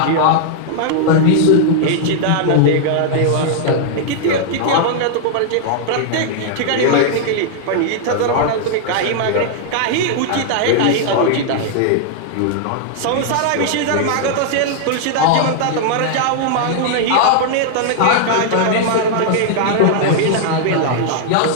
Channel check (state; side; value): different; both; correlation -0.01